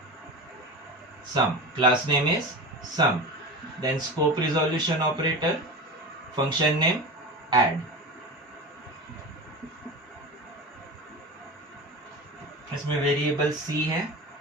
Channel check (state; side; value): normal; both; correlation 0.28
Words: sum, class name is sum। Then scope resolution operator, function name add। इसमें वेरिएबल c है,